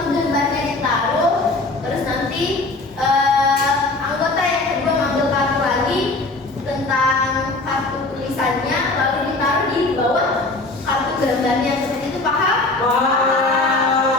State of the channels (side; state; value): right; quieter; 3.1 dB